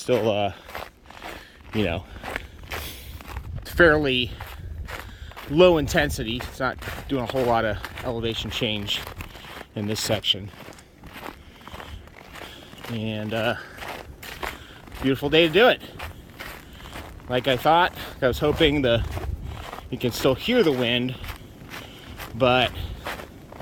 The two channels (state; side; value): identical; both; correlation 1.00